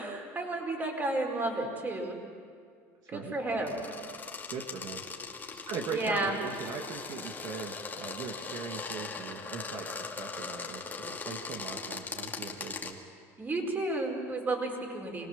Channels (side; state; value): both; normal; correlation 0.46